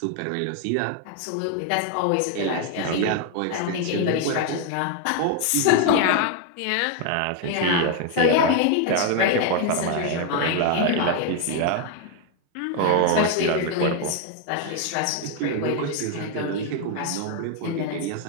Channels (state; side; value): different; both; correlation 0.01